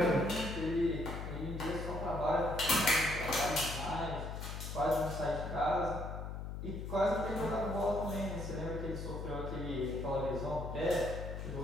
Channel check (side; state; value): left; noise; hum, 6 dB below the sound